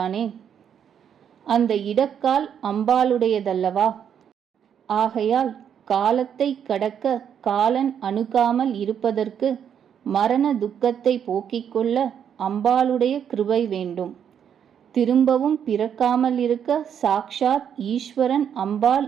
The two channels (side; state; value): left; quieter; 8.4 dB